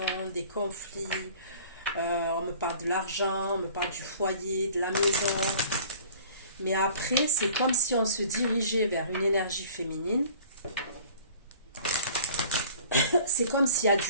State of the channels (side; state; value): both; inverted; correlation -0.47